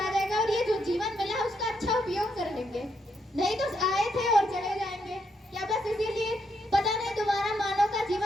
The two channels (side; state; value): both; normal; correlation 0.78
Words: जाएगा, और ये जो जीवन मिला उसका अच्छा उपयोग कर लेंगे। नहीं तो आए थे और चले जाएंगे। क्या बस इसीलिए? पता नहीं दोबारा मानव का